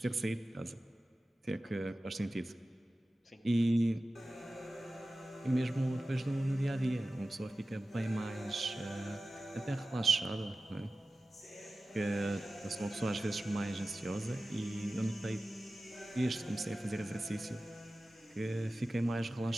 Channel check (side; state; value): both; normal; correlation 0.95